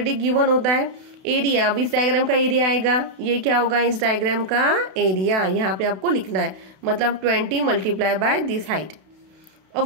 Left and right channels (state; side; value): late; left; 32 ms